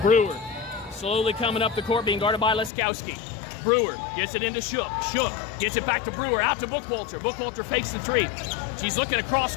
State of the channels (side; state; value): right; drops out; at 2.7 s